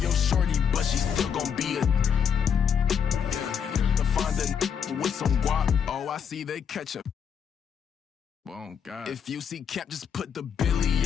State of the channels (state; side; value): quieter; right; 7.4 dB